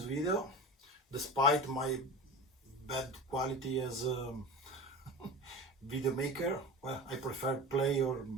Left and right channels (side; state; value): both; normal; correlation 0.31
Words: video, despite my bad quality as a video maker. Well, I prefer play or